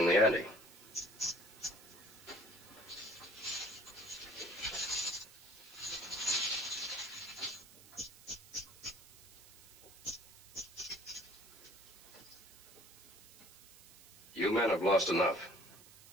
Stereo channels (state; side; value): noise; right; hiss, 21 dB below the sound